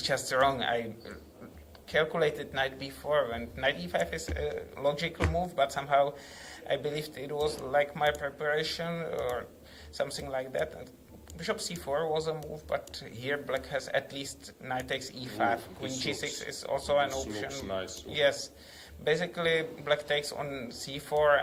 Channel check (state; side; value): identical; both; correlation 1.00